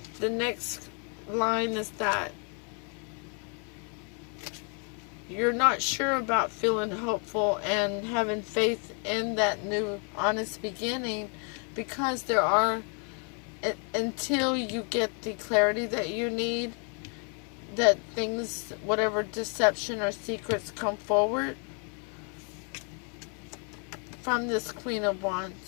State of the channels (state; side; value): quieter; right; 39.0 dB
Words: the next line is that you're not sure about feeling hopeful and having faith in that new honest beginning, because there are, until you get the clarity that you need, that things, whatever deception or secrets come forward from this Queen of